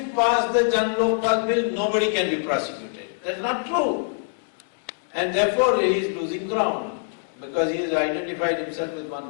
pass the Jan Lokpal bill, nobody can be prosecuted. That's not true. And therefore he is losing ground because he has identified himself with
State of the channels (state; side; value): silent; right; digital silence